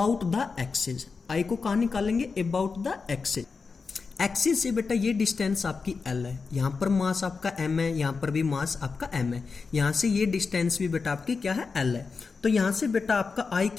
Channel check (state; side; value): quieter; right; 4.8 dB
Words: द एक्सिस। I को कहाँ निकालेंगे, अबाउट द एक्सिस। एक्सिस से बेटा ये डिस्टेंस आपकी L है, यहाँ पर मास आपका M है, यहाँ पर भी मास आपका M है, यहाँ से ये डिस्टेंस भी बेटा आपकी क्या है L है। तो यहाँ से बेटा आपका I